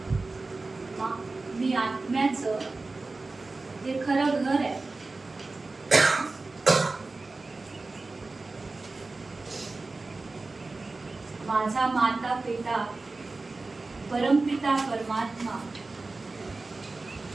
मी आत्म्याचं हे खरं घर आहे. माझा माता पिता परमपिता परमात्मा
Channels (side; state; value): left; quieter; 3.5 dB